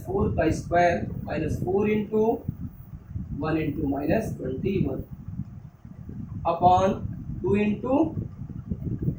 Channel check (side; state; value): both; identical; correlation 1.00